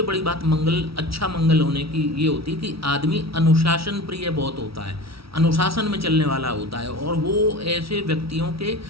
बड़ी बात मंगल, अच्छा मंगल होने की ये होती है कि आदमी अनुशासन प्रिय बहुत होता है, अनुशासन में चलने वाला होता है, और वो ऐसे व्यक्तियों के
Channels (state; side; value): late; left; 0.75 ms